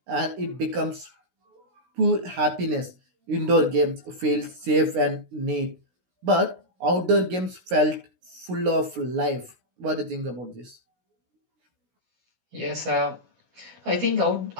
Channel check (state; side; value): late; left; 16 ms